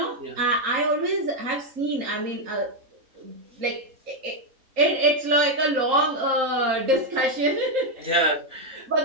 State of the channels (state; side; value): late; left; 3.8 ms